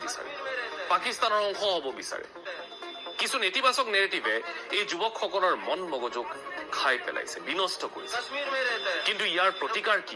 বিচাৰে, পাকিস্তানৰ অংশ হ'ব বিচাৰে। কিছু নেতিবাচক নেৰেটিভে এই যুৱকসকলৰ মন মগজুক খাই পেলাইছে, বিনষ্ট কৰিছে। কিন্তু ইয়াৰ প্ৰতিকাৰ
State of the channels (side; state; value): both; identical; correlation 1.00